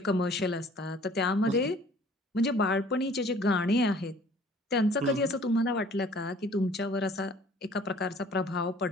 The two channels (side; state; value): both; normal; correlation 0.53